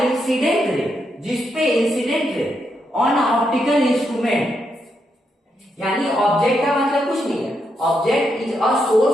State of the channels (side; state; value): both; normal; correlation 0.81